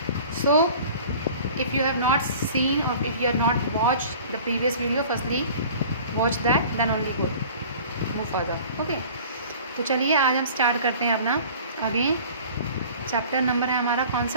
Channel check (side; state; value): both; inverted; correlation -0.44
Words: So if you have not seen or if you have not watched the previous video, firstly watch that, then only move further. Okay, तो चलिए आज हम start करते हैं अपना again chapter number है हमारा कौन